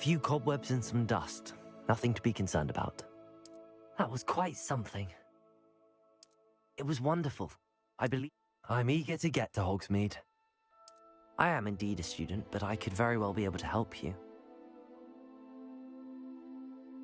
cobwebs and some dust. Nothing to be concerned about. That was quite something. It was wonderful. I believe I'm eager to get to Hogsmeade. I am indeed a student, but I could very well be able to help you.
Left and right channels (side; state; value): both; identical; correlation 1.00